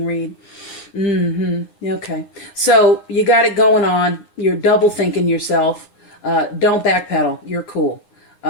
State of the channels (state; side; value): late; right; 9.7 ms